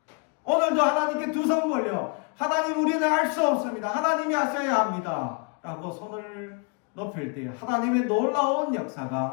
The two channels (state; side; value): quieter; right; 33.8 dB